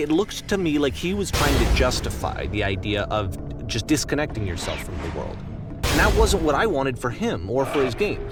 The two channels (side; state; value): both; identical; correlation 1.00